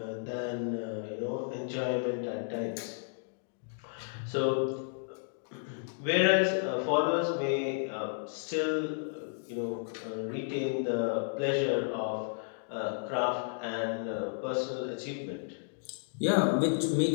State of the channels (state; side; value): silent; right; digital silence